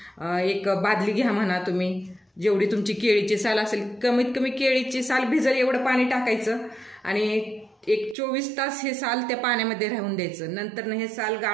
एक बादली घ्या म्हणा तुम्ही, जेवढी तुमची केळीची साल असेल, कमीत कमी केळीची साल भिजल एवढं पाणी टाकायचं आणि एक 24 तास हे साल त्या पाण्यामध्ये राहून द्यायचं. नंतर हे साल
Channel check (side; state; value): left; drops out; at 8.2 s